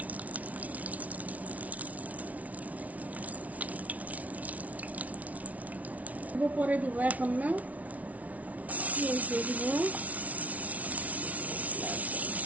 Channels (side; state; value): left; late; 0.070 ms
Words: পরে দিব, এখন না, পেঁয়াজ দিয়ে দিব,